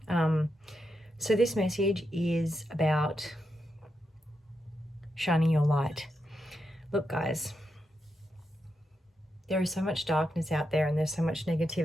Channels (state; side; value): normal; both; correlation 0.85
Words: So this message is about shining your light. Look, guys, there is so much darkness out there and there's so much